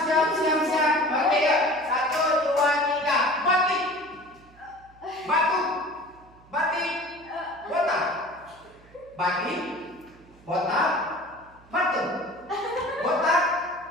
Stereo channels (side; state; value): right; noise; hum, 26 dB below the sound